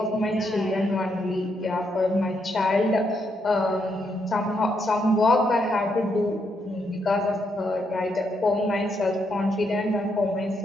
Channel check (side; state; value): both; normal; correlation 0.78